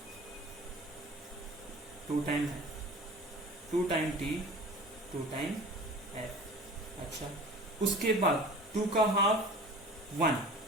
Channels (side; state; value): both; normal; correlation 0.40